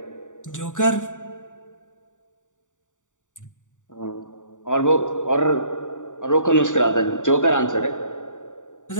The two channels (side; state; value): right; late; 0.86 ms